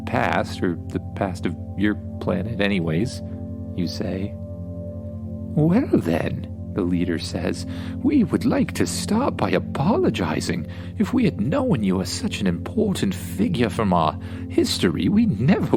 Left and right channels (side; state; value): both; identical; correlation 1.00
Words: past, or the past of your planet anyways, you say. Well then, the leader says, we would like to start by apologizing. If we had known you were such an important figure from our history, we never